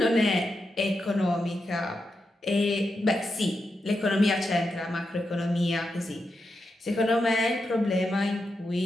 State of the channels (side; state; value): both; normal; correlation 0.87